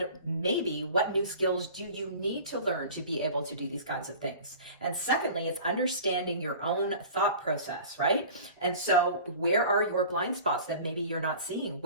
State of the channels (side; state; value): both; inverted; correlation -0.41